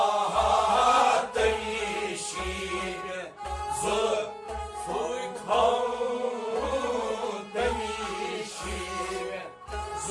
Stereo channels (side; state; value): both; identical; correlation 1.00